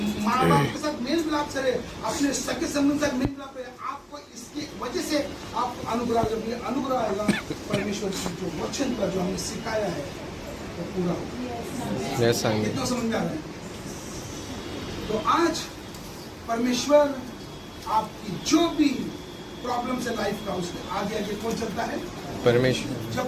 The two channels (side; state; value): both; identical; correlation 1.00